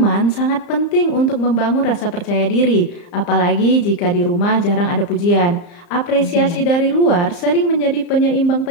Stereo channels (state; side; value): late; right; 34 ms